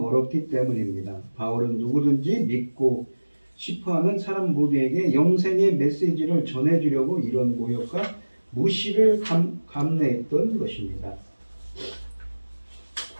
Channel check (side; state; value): both; inverted; correlation -1.00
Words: 때문입니다. 바울은 누구든지 믿고 싶어하는 사람 모두에게 영생의 메시지를 전해주려고 이런 모욕과 무시를 감내했던 것입니다.